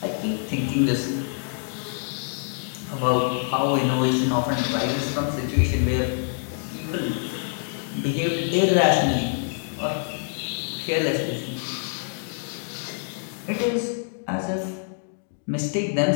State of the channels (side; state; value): right; silent; digital silence